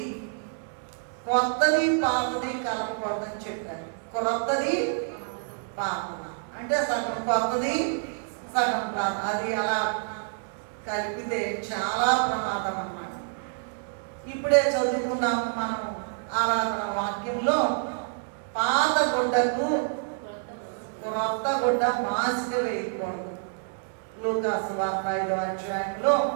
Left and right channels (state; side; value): silent; left; digital silence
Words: కొత్తది పాతది కలపకూడదని చెప్పారు. కొత్తది పాతది అంటే సగం కొత్తది సగం పాత, అది అలా కలిపితే చాలా ప్రమాదం అన్నమాట. ఇప్పుడే చదువుకున్నాము మనం ఆరాధన వాక్యంలో, పాత గుడ్డకు క్రొత్త గుడ్డ మాసిక వేయకూడదు. లూకాసు వార్త 5వ అధ్యాయంలో